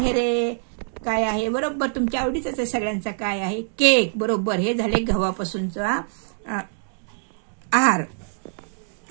रे? काय आहे? बरोबर तुमच्या आवडीचाच आहे सगळ्यांचा. काय आहे? केक. बरोबर. हे झाले गव्हापासूनचा आहार.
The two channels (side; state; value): left; silent; digital silence